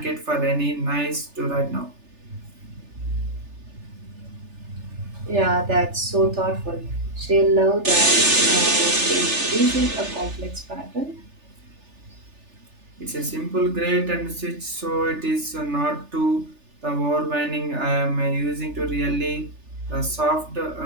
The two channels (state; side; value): late; left; 3.4 ms